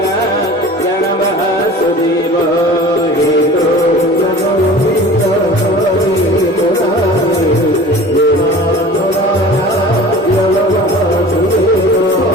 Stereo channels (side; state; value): both; normal; correlation 0.41